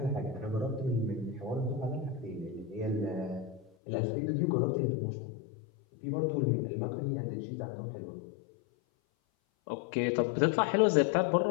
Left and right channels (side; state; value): right; drops out; at 3.7 s